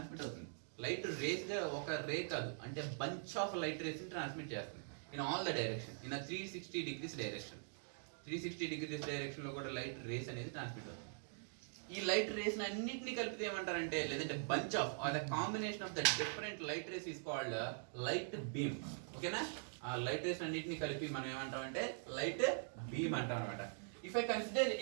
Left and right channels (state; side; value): silent; left; digital silence